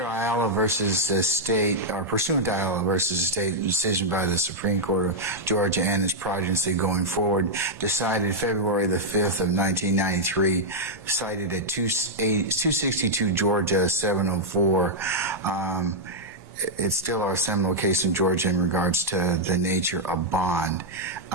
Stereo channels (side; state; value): both; normal; correlation -0.05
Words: Ayala versus the state, or pursuant to Ayala versus the state decision by the Supreme Court of Georgia and its progeny going forward, decided February the 5th of 1993, cited at 262 Georgia 704. It's still our seminal case in Georgia in regards to the nature of bond.